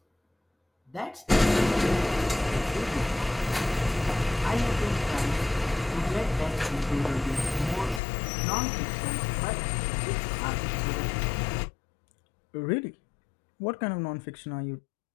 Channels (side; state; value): right; drops out; at 8.0 s